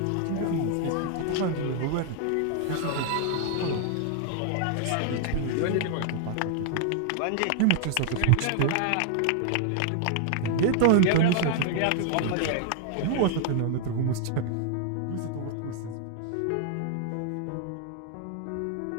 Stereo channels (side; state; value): both; different; correlation 0.00